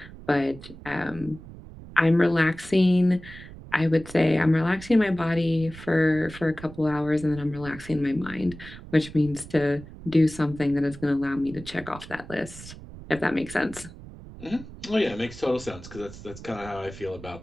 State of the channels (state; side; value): noise; right; rumble, 16 dB below the sound